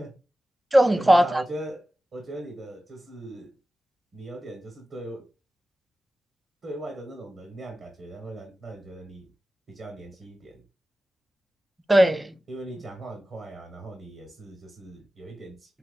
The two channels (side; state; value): both; normal; correlation 0.95